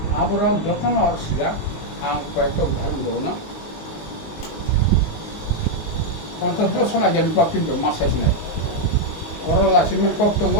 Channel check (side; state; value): right; late; 19 ms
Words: আবার যখন আর সিয়া আং কয়েকটা উদাহরণ দেবো না 50 বছর আগে কিন্তু মাসাইস নাই ওরা লাসিমের কর্তব্য